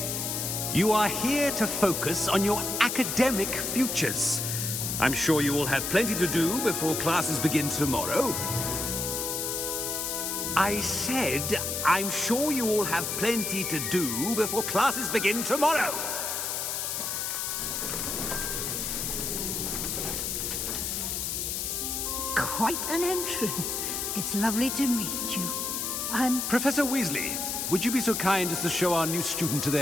You are here to focus on your academic futures. I'm sure you will have plenty to do before classes begin tomorrow. I said, I'm sure you all have plenty to do before classes begin tomorrow. Quite an entrance. It's lovely to meet you. I'm... Professor Weasley, would you be so kind as to show our new student to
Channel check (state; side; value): noise; left; hiss, 2 dB below the sound